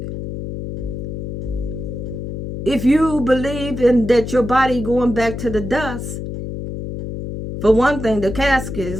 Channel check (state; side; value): noise; left; hum, 6 dB below the sound